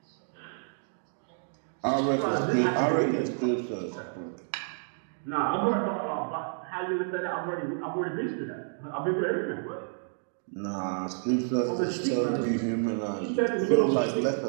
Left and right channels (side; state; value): left; silent; digital silence